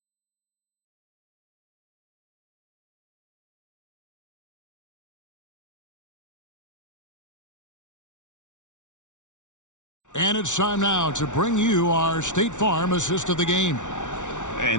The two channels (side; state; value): right; late; 0.86 ms